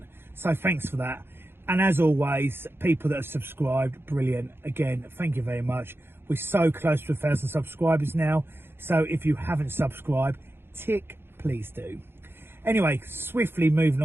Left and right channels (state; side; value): late; left; 0.11 ms